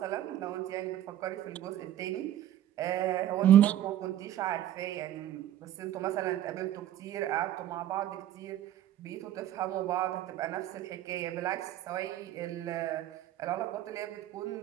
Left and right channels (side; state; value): left; quieter; 12.1 dB